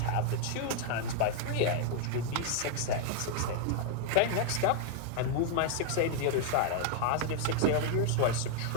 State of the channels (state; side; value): different; both; correlation 0.00